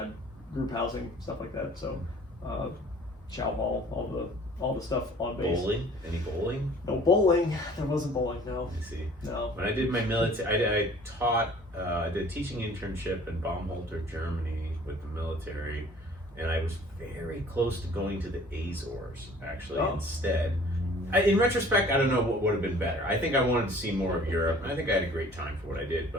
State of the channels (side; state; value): both; normal; correlation 0.51